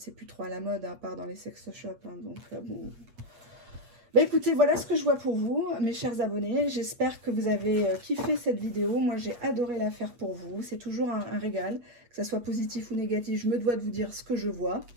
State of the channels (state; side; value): late; left; 8.3 ms